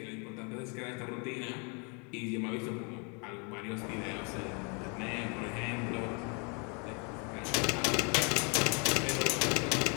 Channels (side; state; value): right; quieter; 34.7 dB